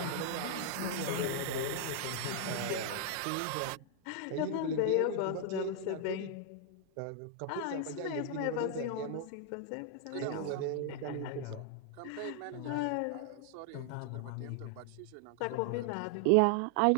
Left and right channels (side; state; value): both; different; correlation 0.00